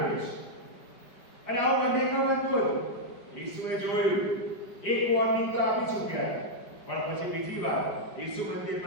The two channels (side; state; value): right; late; 5.0 ms